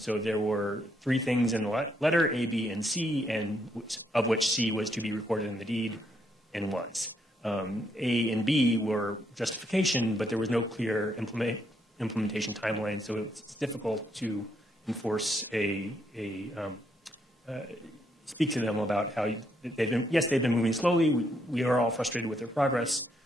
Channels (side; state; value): both; normal; correlation 0.75